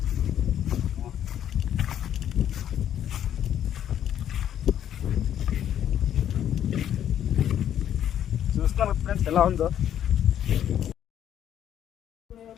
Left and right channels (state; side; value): quieter; right; 10.3 dB